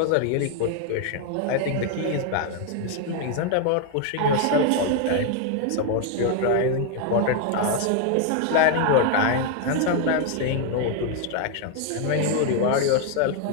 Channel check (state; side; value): different; both; correlation 0.01